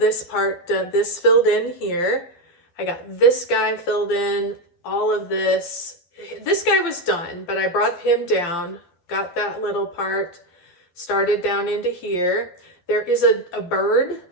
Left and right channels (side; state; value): right; late; 11 ms